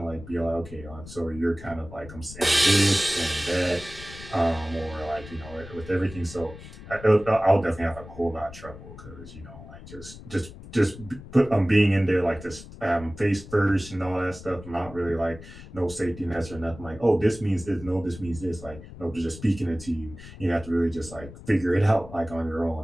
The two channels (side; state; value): left; noise; rumble, 15 dB below the sound